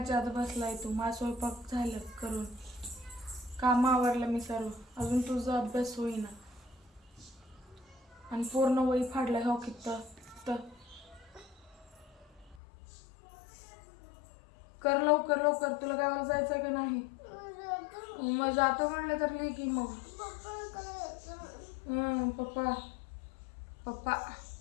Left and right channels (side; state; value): right; drops out; at 12.6 s